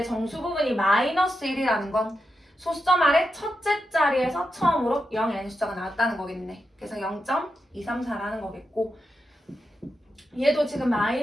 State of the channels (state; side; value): normal; both; correlation 0.87